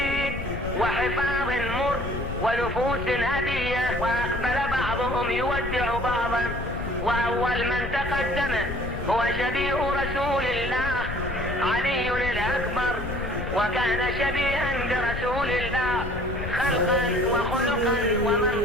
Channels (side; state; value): left; noise; rumble, 7 dB below the sound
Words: وحفاظ مر ونفوس هدية، وأقبل بعضهم يودع بعضا، وأول من تقدم هو شبيه رسول الله علي الأكبر، وكان شبيها برسول الله خلقا وخلقا